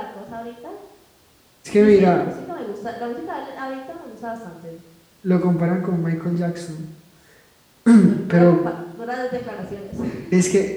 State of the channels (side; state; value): both; identical; correlation 1.00